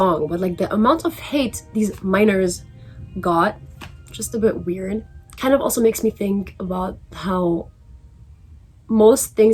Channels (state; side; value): identical; both; correlation 1.00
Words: but like the amount of hate these minors got, just a bit weird. Kind of also makes me think about how most